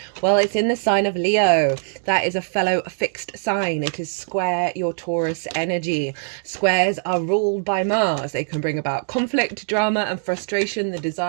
Well, it's in the sign of Leo. That is a fellow fixed sign. It is square your Taurus energy. Squares are ruled by Mars. They can bring about conflict, drama and frustration, the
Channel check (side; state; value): left; silent; digital silence